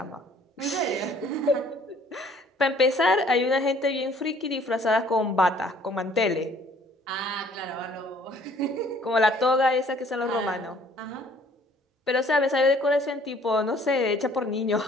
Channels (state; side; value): normal; both; correlation 0.57